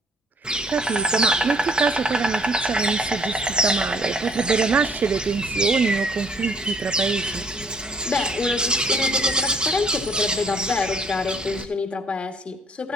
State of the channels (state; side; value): normal; both; correlation 0.62